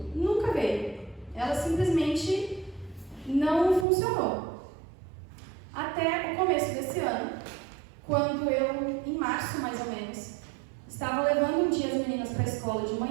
nunca veio. Ela simplesmente não funcionou. Até o começo desse ano, quando eu, em março mais ou menos, estava levando um dia as meninas para a escola de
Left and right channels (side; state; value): left; drops out; at 3.9 s